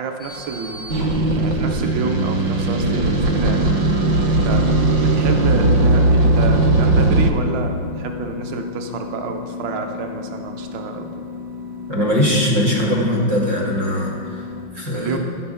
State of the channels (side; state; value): left; late; 5.5 ms